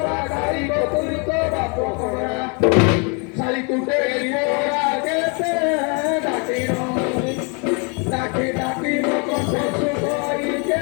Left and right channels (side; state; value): right; quieter; 34.7 dB